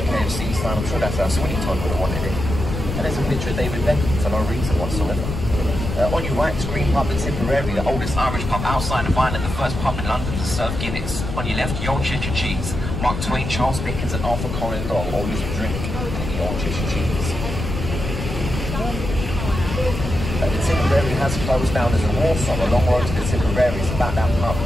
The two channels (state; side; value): noise; left; rumble, 5 dB below the sound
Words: KFC sign. I'm sure that's how Sweeney Todd would have wanted it. And there's a picture of David Beckham for no reason whatsoever. On your right is Green Pub in Tipperary, the oldest Irish pub outside of Ireland, the first pub in London to serve Guinness. On your left, Old Cheshire Cheese. Mark Twain, Charles Dickens and Arthur Conan Doyle all used to drink the Old Cheshire Cheese. The Tipperary has closed down as a war song. A long road to the Tipperary is about that pub.